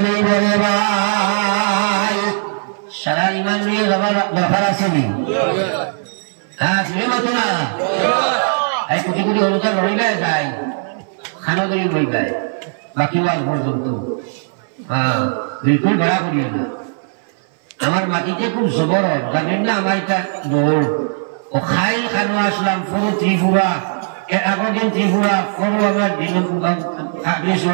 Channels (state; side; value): silent; left; 61 dB below the other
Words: নেই বলে ভাই। সারা ইমান লইয়া যাবার দরকার আছে নি? হ্যাঁ, শুনে মতো না এই কোটি কোটি অনুদান রইবে যায়, খানা ধরি বইবে বাকি ওয়াজ পর্যন্ত। হ্যাঁ, বিলকুল ভাড়া করিও না। আমার মাটিতে খুব জবর, জানেন না? আমার এটা দৌড় ও খাই খানো আসলাম পুরো ত্রিপুরা, এর আগের দিন ত্রিপুরা পুরো আমার দিন